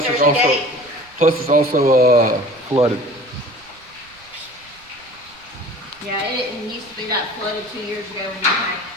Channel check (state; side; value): noise; right; rumble, 28 dB below the sound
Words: There's it's a also gate. flooded. Yeah, it didn't used to be that flooded 2 years ago when you came.